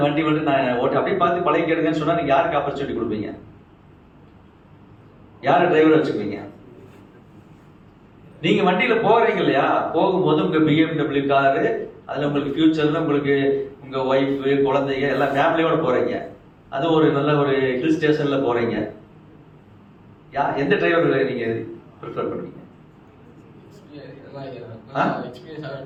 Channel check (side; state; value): both; identical; correlation 1.00